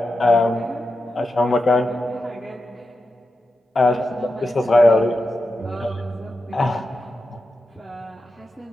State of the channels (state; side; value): normal; both; correlation 0.89